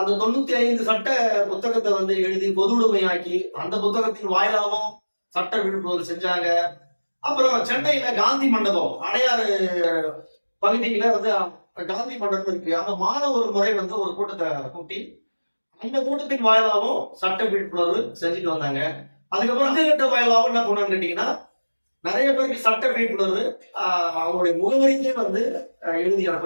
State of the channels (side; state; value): both; inverted; correlation -1.00